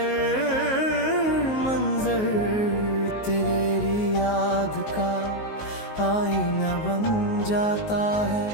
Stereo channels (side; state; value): right; late; 19 ms